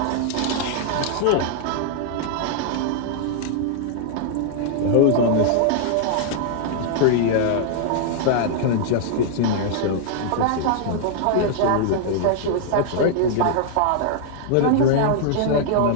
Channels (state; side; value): different; both; correlation -0.01